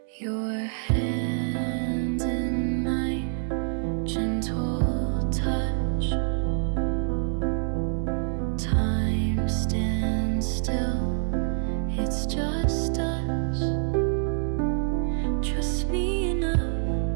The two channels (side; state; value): left; silent; 61 dB below the other